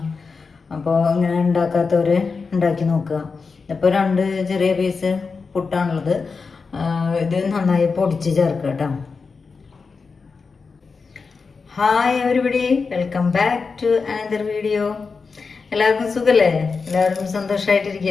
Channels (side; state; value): right; quieter; 4.8 dB